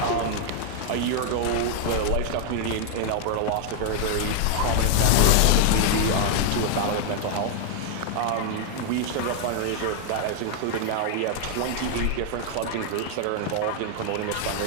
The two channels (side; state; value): both; different; correlation 0.00